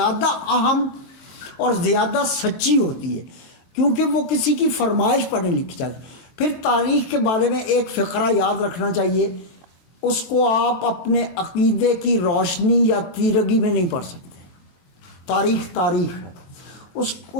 اہم اور زیادہ سچی ہوتی ہے، کیونکہ وہ کسی کی فرمائش پر نہیں لکھی جاتی. پھر تاریخ کے بارے میں ایک فقرہ یاد رکھنا چاہیے، اس کو آپ اپنے عقیدے کی روشنی یا تیرگی میں نہیں پڑھ سکتے. تاریخ ہے،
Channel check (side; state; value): right; late; 23 ms